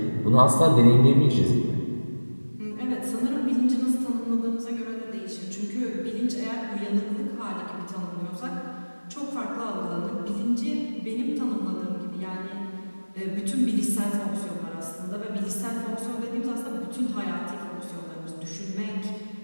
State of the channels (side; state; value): both; inverted; correlation -1.00